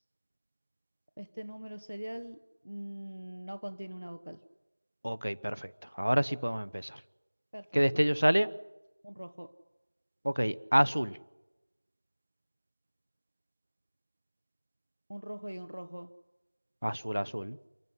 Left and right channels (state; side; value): inverted; both; correlation -1.00